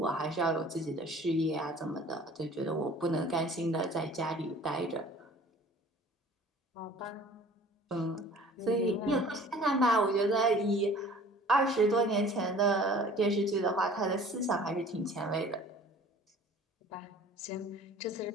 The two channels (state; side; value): normal; both; correlation 0.48